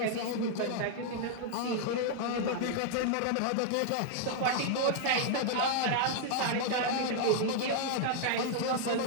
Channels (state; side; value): different; both; correlation 0.00